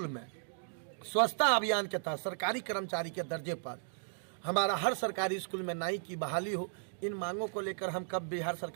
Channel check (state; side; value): silent; left; digital silence